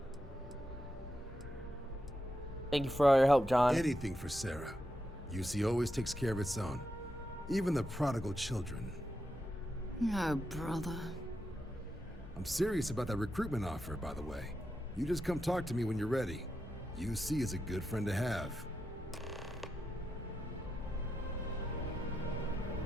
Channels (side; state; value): both; normal; correlation 0.86